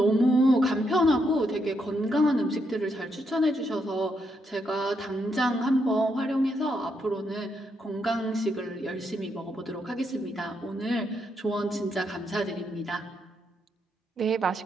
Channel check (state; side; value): normal; both; correlation 0.79